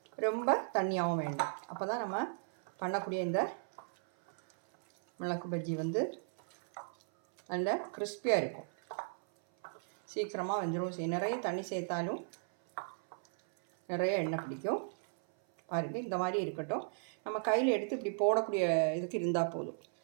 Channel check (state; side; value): silent; left; 54 dB below the other